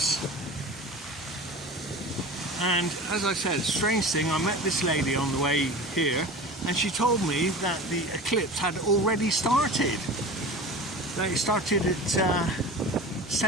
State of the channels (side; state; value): both; normal; correlation 0.35